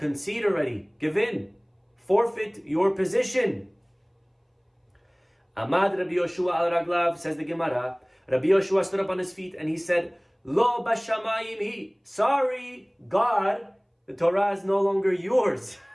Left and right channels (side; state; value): both; identical; correlation 1.00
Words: already. Give in. Forfeit your position. Amad Rabbi Yehoshua al raglav, says the Gemara. Rabbi Yehoshua stood up on his feet and he said, Lo bashamayim hi. Sorry, God, the Torah is no longer yours.